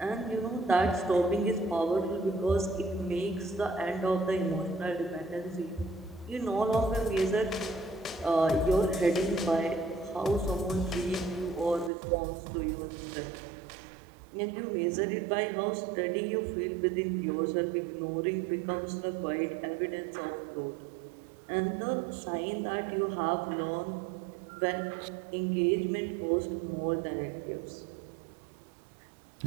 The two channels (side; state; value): left; drops out; at 11.9 s